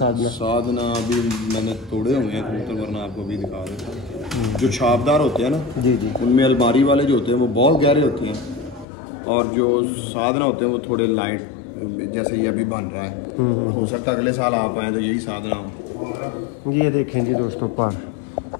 साधना अभी मैंने तोड़े हुए हैं कबूतर, वरना आपको अभी दिखा देता। जो छापदार होते हैं ना जी जी, उनमें अलमारी वाले जो होते हैं वो बहुत गहरे होते हैं, और जो साधना होते हैं वो थोड़े लाइट, जैसे ये अभी बन रहा है। हो सकता है अगले साल आप आए तो यही साधना हो। ये देखेंगे दोस्तों पर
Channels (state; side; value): drops out; right; at 8.8 s